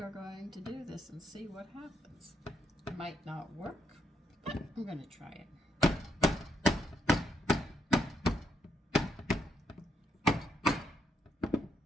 are going to do this and see what happens. It might not work, but I'm going to try it.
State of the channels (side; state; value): both; normal; correlation 0.76